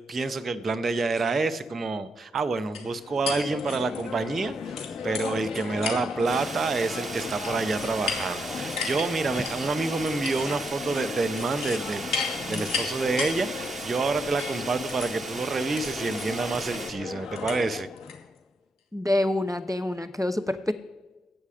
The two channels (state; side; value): normal; both; correlation 0.80